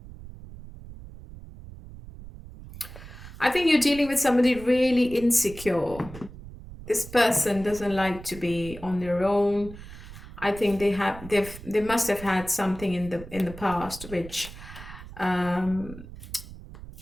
I think you're dealing with somebody really insecure. This person doesn't like to be on their own. I think they must have had something in the past which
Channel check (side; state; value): right; noise; rumble, 15 dB below the sound